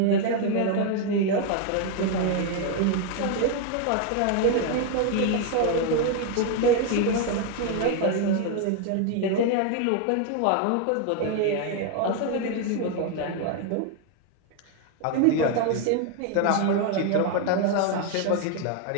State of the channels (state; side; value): different; both; correlation 0.01